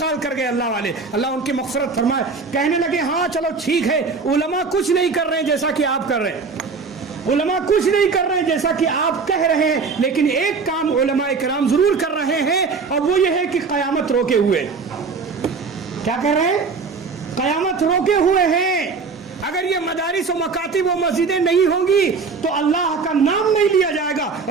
کر گئے اللہ والے, اللہ ان کی مغفرت فرمائے. کہنے لگے ہاں چلو ٹھیک ہے, علماء کچھ نہیں کر رہے ہیں جیسا کہ آپ کر رہے ہیں, علماء کچھ نہیں کر رہے ہیں جیسا کہ آپ کہہ رہے ہیں, لیکن ایک کام علماء کرام ضرور کر رہے ہیں, اور وہ یہ ہے کہ قیامت روکے ہوئے. کیا کہہ رہے ہیں؟ قیامت روکے ہوئے ہیں. اگر یہ مدارس و مکاتب و مسجدیں نہیں ہوں گی تو اللہ کا نام نہیں لیا جائے گا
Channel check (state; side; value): quieter; left; 4.7 dB